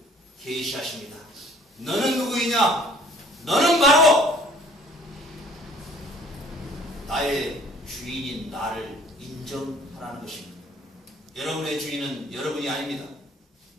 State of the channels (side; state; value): both; normal; correlation 0.54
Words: 계시하십니다. 너는 누구이냐? 너는 바로 나의 주인인 나를 인정하라는 것입니다. 여러분의 주인은 여러분이 아닙니다.